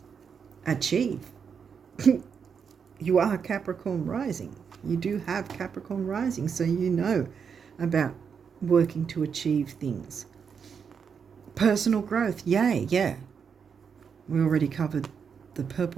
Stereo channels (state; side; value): quieter; left; 6.6 dB